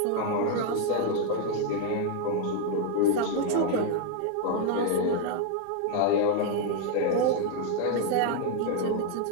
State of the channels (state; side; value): different; both; correlation 0.00